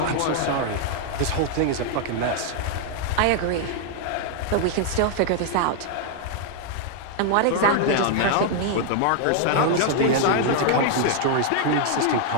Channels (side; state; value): both; different; correlation 0.00